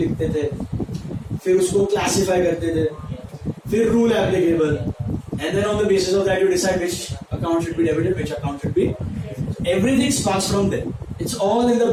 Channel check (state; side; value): identical; both; correlation 1.00